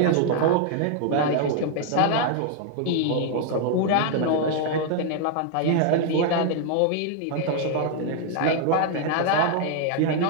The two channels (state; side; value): different; both; correlation 0.00